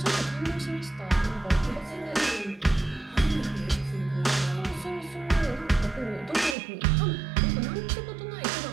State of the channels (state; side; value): drops out; left; at 6.6 s